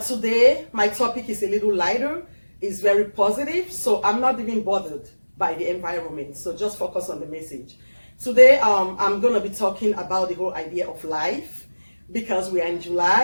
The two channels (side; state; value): both; inverted; correlation -1.00